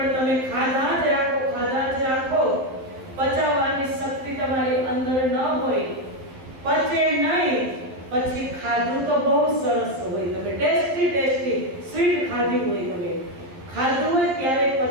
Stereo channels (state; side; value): late; left; 11 ms